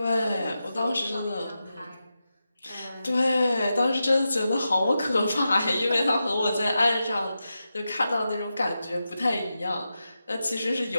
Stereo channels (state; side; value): inverted; both; correlation -0.90